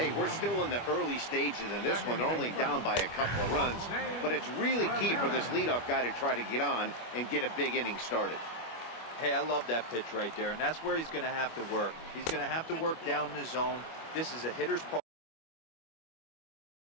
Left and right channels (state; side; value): late; right; 25 ms